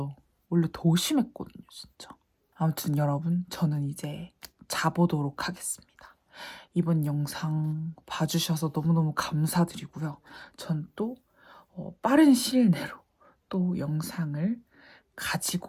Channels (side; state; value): both; identical; correlation 1.00